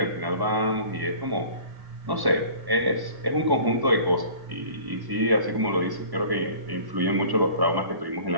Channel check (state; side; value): late; left; 1.1 ms